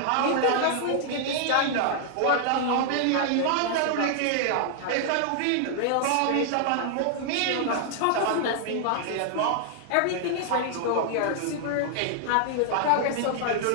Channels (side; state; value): both; different; correlation -0.01